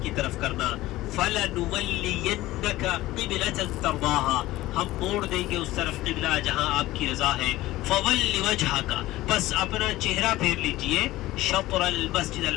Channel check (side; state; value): right; quieter; 17.0 dB